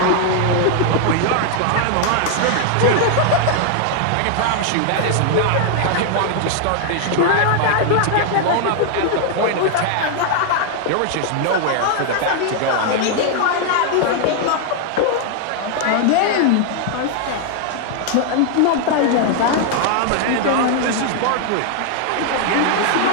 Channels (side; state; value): both; different; correlation 0.00